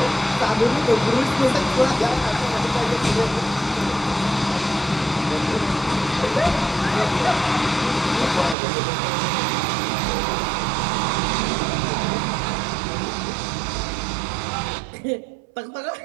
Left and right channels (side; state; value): left; drops out; at 8.6 s